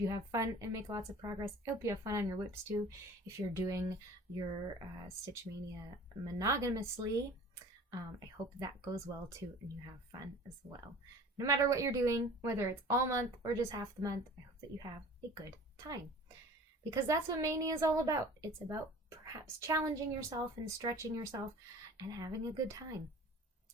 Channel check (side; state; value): both; normal; correlation 0.44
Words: have fun and make lots of progress. I hope you have fun on your whips too. If you're doing your Stitch Mania monogamously, I hope that goes well too, and you have fun as well. No matter what you're doing, whether it's all month or just half the month, I hope that you have a good time. Because that's what Mania is all about. It's about perhaps challenging yourself and stretching yourself and having a good time.